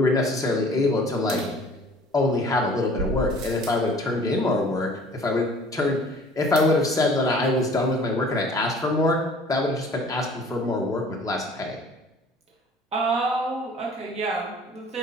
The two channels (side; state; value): both; normal; correlation 0.50